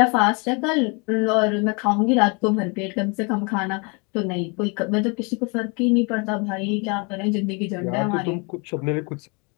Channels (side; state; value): right; quieter; 32.2 dB